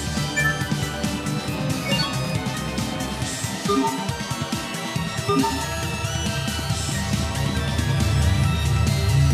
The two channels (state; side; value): identical; both; correlation 1.00